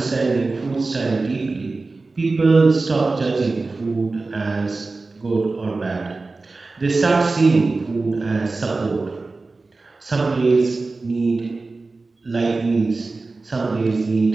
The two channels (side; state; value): left; quieter; 3.6 dB